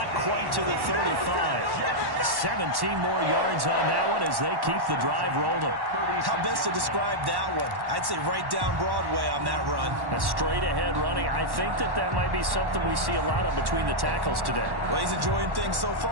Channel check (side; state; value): left; late; 1.1 ms